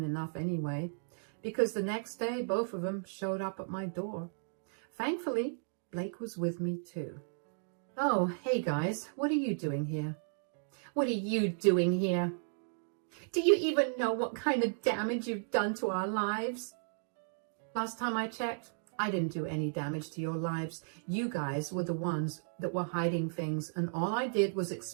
enough anyway, because the next day, both of them showed up at my door. Thankfully, Blake was with me too. Oh, hey guys, what are you doing here? What are you doing here? Do you even know what kind of damage you've done to our lives? Last time I checked, I didn't do any damage to your lives. You guys were the ones that were hiding things, and all I did was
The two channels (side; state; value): left; silent; digital silence